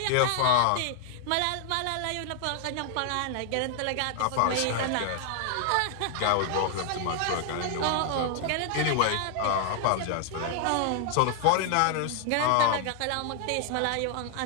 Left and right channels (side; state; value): both; different; correlation 0.00